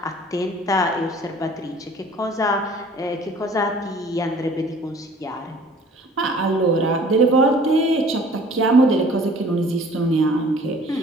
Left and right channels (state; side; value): normal; both; correlation 0.51